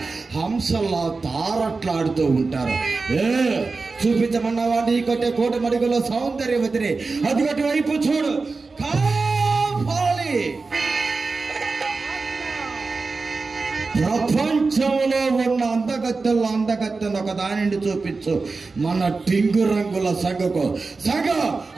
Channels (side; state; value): left; quieter; 4.0 dB